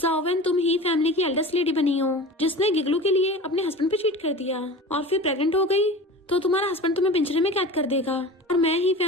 तुम ही फैमिली की एल्डेस्ट लेडी बनी हो, जिसने गिगलू के लिए अपने हस्बैंड पे चीट कर दिया और फिर प्रेग्नेंट हो गई, तो तुम्हारा हस्बैंड तुम्हें पिंजरे में कैद कर देगा। और मैं ही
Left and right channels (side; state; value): both; normal; correlation 0.35